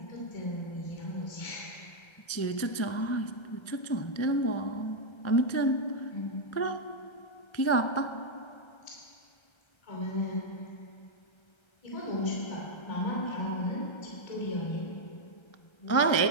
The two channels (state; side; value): late; right; 1.3 ms